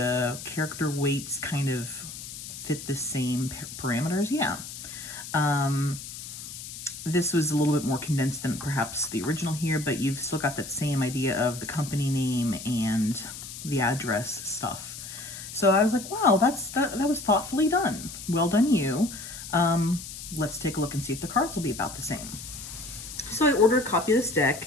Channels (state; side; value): noise; left; hiss, 11 dB below the sound